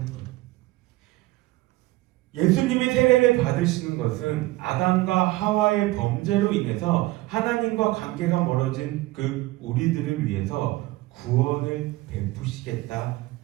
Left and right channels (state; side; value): quieter; left; 19.1 dB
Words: 거예요. 예수님의 세례를 받으시는 것은 아담과 하와의 범죄로 인해서 하나님과 관계가 멀어진 그 우리들을 위해서 구원을 베푸시겠다